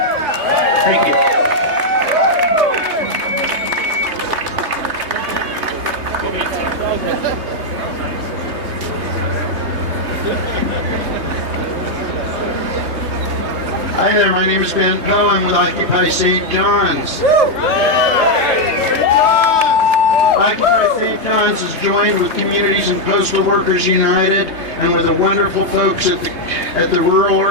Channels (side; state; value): left; late; 3.2 ms